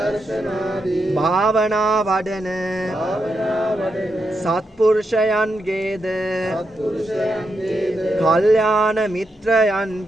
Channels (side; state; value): both; normal; correlation 0.84